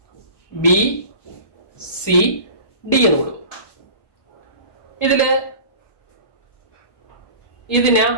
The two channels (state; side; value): late; right; 1.2 ms